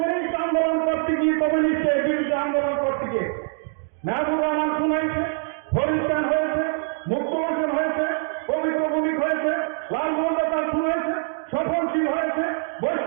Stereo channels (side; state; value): left; silent; digital silence